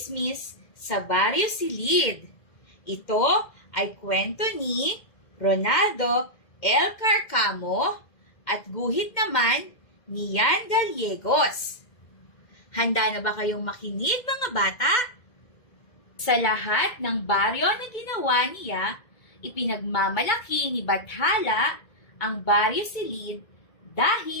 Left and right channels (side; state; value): right; late; 2.0 ms